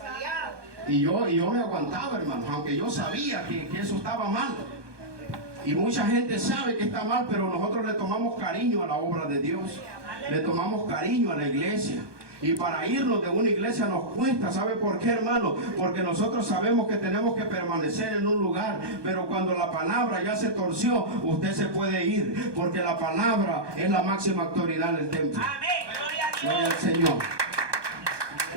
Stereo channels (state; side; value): late; left; 1.2 ms